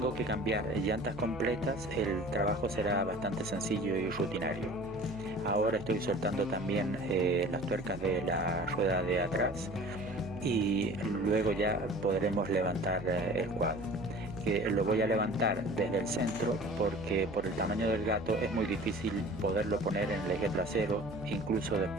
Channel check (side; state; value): right; noise; hum, 15 dB below the sound